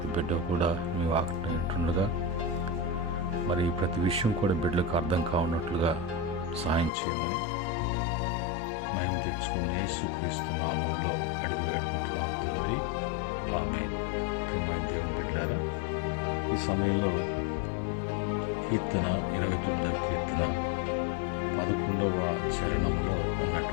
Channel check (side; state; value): right; drops out; at 6.9 s